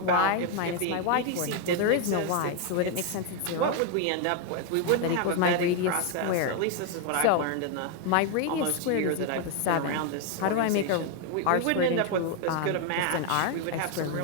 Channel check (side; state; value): both; different; correlation 0.01